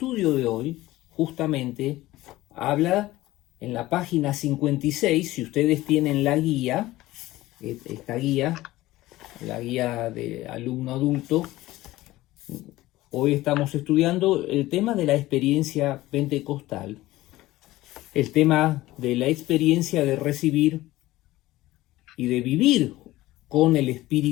de hoy justamente habla en la página 56, si ustedes tienen la guía, esta guía, la guía de alumno adulto. Hoy estamos estudiando el tema de la experiencia pentecostal, el tema de la experiencia de recibir y de vivir con el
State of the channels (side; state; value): right; quieter; 17.2 dB